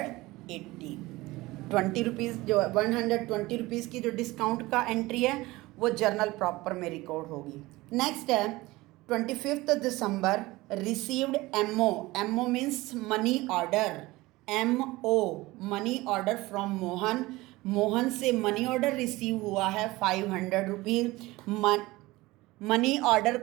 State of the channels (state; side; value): quieter; left; 20.0 dB